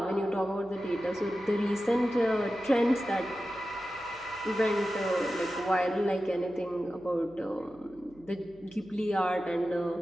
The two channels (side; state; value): right; noise; hum, 26 dB below the sound